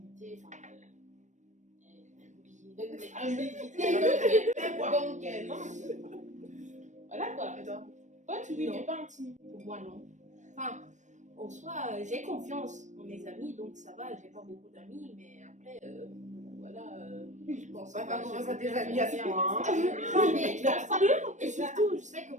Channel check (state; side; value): late; left; 0.35 ms